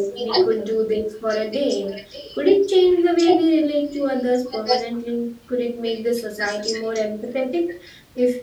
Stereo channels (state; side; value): identical; both; correlation 1.00